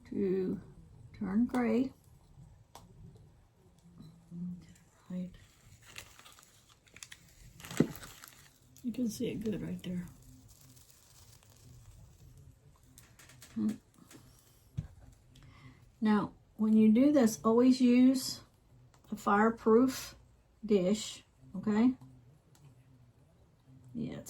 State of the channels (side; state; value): both; identical; correlation 1.00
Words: to turn gray. Right. You can see it good right there. Now, when you do this, always use a fireproof dish, okay? Yeah,